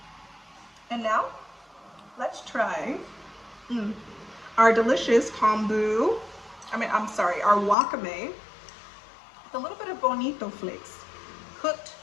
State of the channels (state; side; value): drops out; right; at 7.8 s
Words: And now let's try our delicious kombu. Our wakame with a little bit of bonito flakes, cooked,